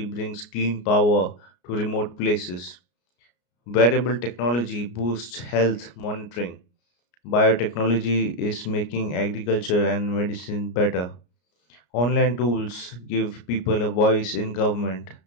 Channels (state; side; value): late; right; 33 ms